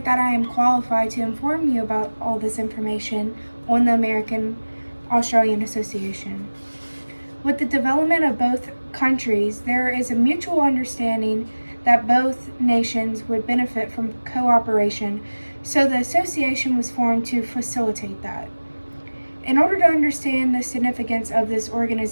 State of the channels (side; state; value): both; inverted; correlation -1.00